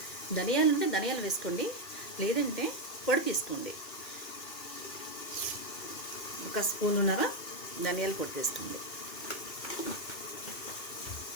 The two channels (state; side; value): late; right; 2.6 ms